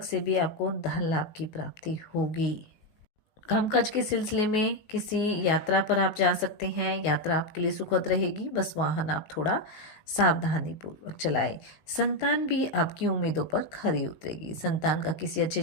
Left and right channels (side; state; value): right; late; 19 ms